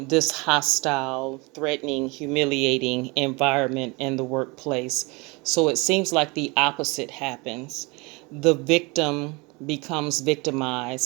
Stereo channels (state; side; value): quieter; left; 26.8 dB